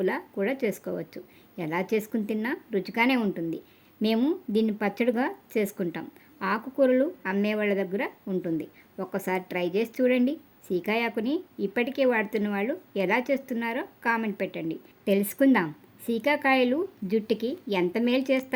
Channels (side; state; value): both; identical; correlation 1.00